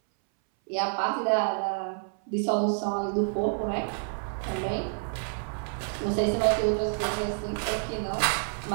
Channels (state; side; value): silent; left; 59 dB below the other